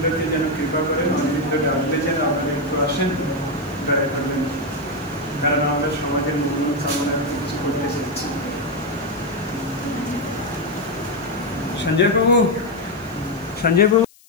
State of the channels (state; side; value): noise; left; hiss, 27 dB below the sound